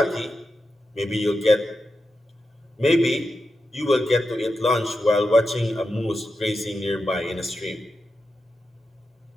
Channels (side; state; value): both; normal; correlation 0.89